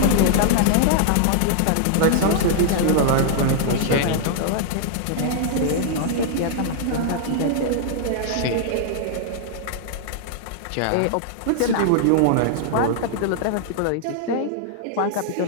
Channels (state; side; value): different; both; correlation -0.01